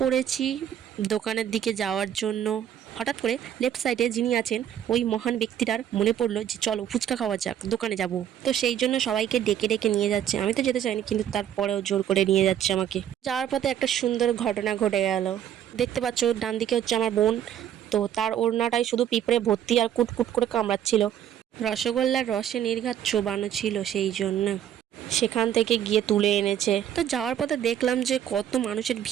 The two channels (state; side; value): quieter; left; 10.2 dB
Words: পড়েছি দোকানের দিকে যাওয়ার জন্য। হঠাৎ করে লেফট সাইডে যিনি আছেন ওই মহান ব্যক্তিটার মনে পড়লো যে চলো ফুচকা খাওয়া যাক, দোকানে যাব। তো সেই জন্য সবাইকে ডেকে ডেকে নিয়ে যাচ্ছে। আমি তো যেতে চাইনি, কিন্তু তারপরেও জোর করে নিয়ে যাচ্ছে আমাকে। যাওয়ার পথে একটা সুন্দর ঘটনা ঘটে গেল। দেখতে পাচ্ছ ডান দিকে হচ্ছে আমার বোন, তো তার ওড়নাটাই শুধু পিঁপড়ে ভর্তি আর কুটকুট করে কামড়াচ্ছিল। রসগোল্লার রসে নির্ঘাত চোবানো ছিল, সেই জন্য সেখান থেকে গিয়ে তুলে এনেছে। তো যাওয়ার পথে দেখলাম যে কত মানুষের